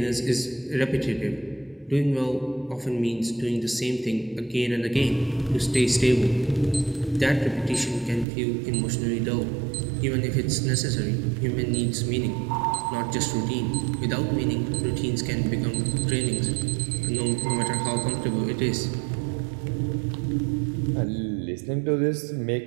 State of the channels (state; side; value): drops out; left; at 8.2 s